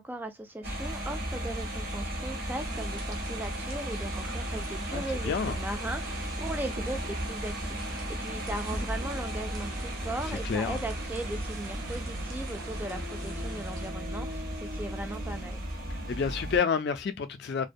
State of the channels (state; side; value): normal; both; correlation 0.53